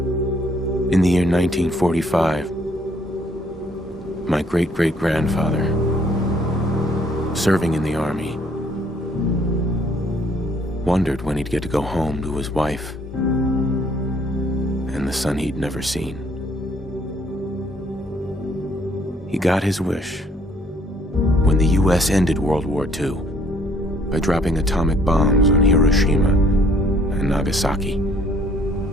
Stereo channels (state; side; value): normal; both; correlation 0.64